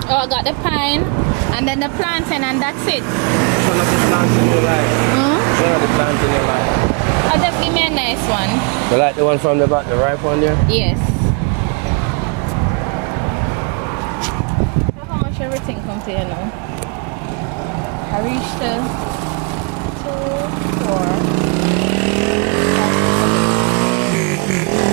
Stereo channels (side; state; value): left; quieter; 35.6 dB